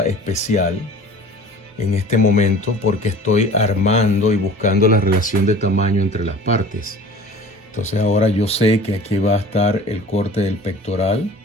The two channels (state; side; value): normal; both; correlation 0.43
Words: especial en este momento porque estoy armando y buscando la relación de tamaño entre las partes. Entonces ahora yo sé que aquí va a estar el corte del pectoral,